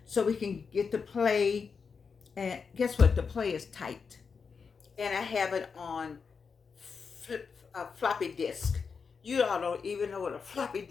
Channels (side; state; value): right; quieter; 5.6 dB